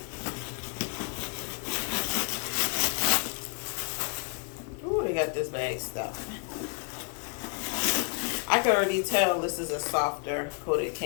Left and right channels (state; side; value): quieter; right; 38.5 dB